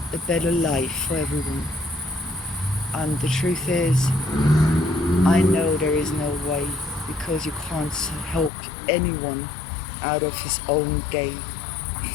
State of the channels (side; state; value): right; drops out; at 8.5 s